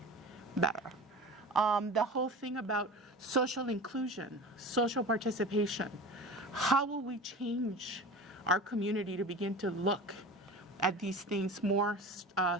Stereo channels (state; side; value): normal; both; correlation 0.34